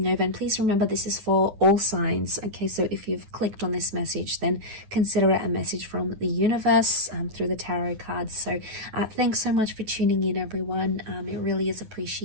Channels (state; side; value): late; left; 9.8 ms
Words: over, and please remember this is for all signs. Okay, so if you've clicked on this message, then consider it a message from the universe through the tarot cards. So thanks so much for tuning in, everyone. It really is